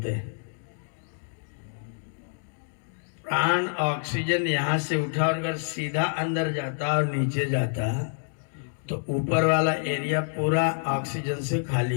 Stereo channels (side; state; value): right; silent; digital silence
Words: हैं। प्राण ऑक्सीजन यहां से उठा और अगर सीधा अंदर जाता और नीचे जाता तो ऊपर वाला एरिया पूरा ऑक्सीजन से